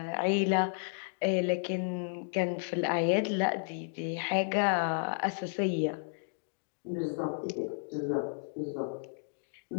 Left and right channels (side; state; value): right; silent; digital silence